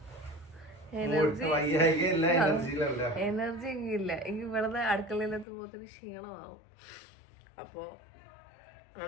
എനർജി ഇല്ല. എനിക്ക് ഇവിടുന്ന് അടുക്കളയിലെത്തുമ്പോ തന്നെ ക്ഷീണമാവും. അപ്പോ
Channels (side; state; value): right; drops out; at 5.5 s